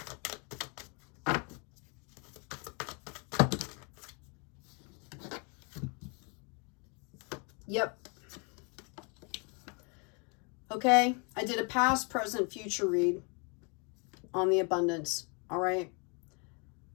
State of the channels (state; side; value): quieter; right; 34.4 dB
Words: Yep. Okay, I did a past, present, future read on the abundance. All right.